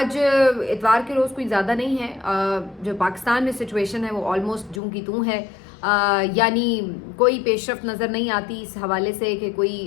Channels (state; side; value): drops out; right; at 4.8 s